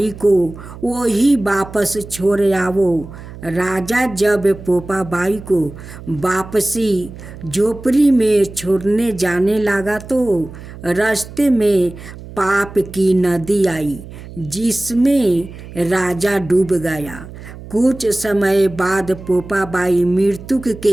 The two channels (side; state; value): right; noise; hum, 15 dB below the sound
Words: को वही वापस छोड़ आवो। राजा जब पोपा बाई को वापसी झोपड़ी में छोड़ने जाने लगा तो रास्ते में पाप की नदी आई, जिसमें राजा डूब गया। कुछ समय बाद पोपा बाई मृत्यु